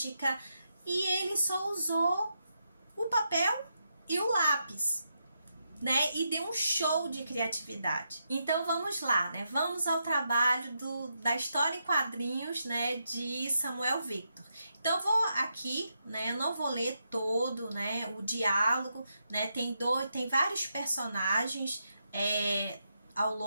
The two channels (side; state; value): both; inverted; correlation -0.83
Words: e ele só usou o papel e o lápis, né, e deu um show de criatividade. Então vamos lá, né, vamos ao trabalho da história em quadrinhos, né, de Samuel Victor. Então eu vou aqui, né, eu não vou ler todo, né, o diálogo, né, tem vários personagens ao